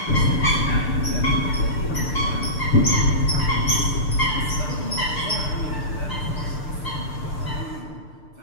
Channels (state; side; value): late; right; 6.7 ms